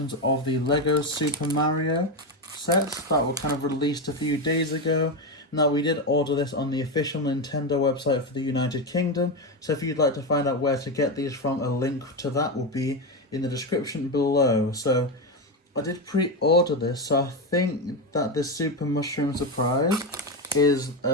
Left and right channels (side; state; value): both; normal; correlation 0.13